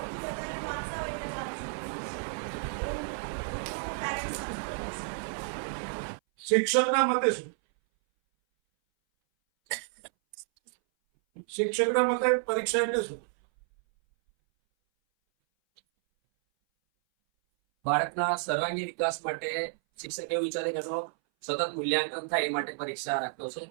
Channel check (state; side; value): silent; left; 57 dB below the other